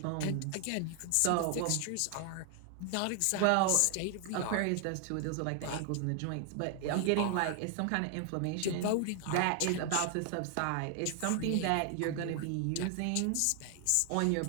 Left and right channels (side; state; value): both; different; correlation 0.00